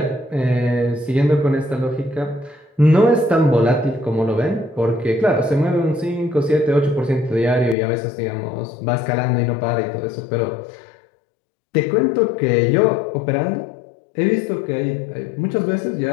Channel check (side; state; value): right; drops out; at 7.8 s